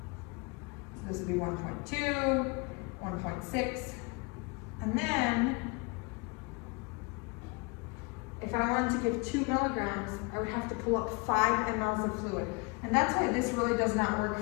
this would be 1.2, 1.6, and then if I wanted to give 2 milligrams, I would have to pull up 5 mLs of fluid. And that's why this really does not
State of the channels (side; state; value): right; quieter; 29.2 dB